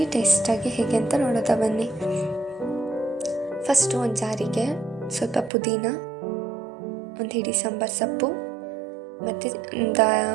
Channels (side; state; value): left; drops out; at 5.5 s